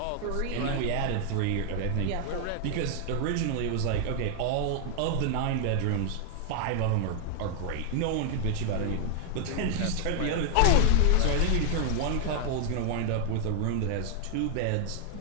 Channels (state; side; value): different; both; correlation 0.00